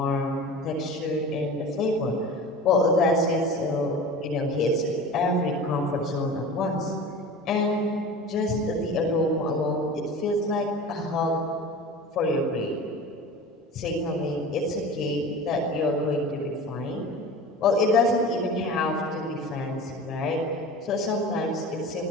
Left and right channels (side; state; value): both; normal; correlation 0.35